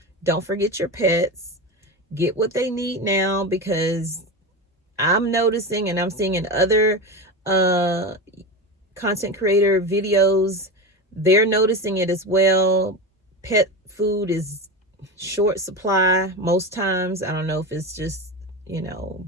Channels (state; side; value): normal; both; correlation 0.22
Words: don't forget your pets. Get what they need now, because I'm noticing, and I'm seeing in other content creator videos, they're noticing it as well. Pet food is short supply most times. I don't know if it's just,